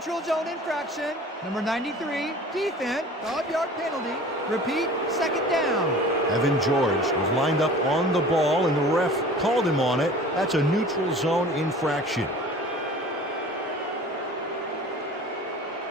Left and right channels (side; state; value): both; normal; correlation 0.43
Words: zone infraction. Number 93, defense, 5-yard penalty. Repeat, second down. Evan George was lined up on the ball, and the ref called him on it. That's a neutral zone infraction.